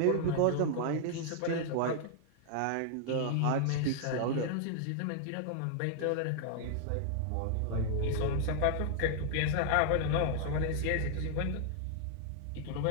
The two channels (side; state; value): both; different; correlation 0.00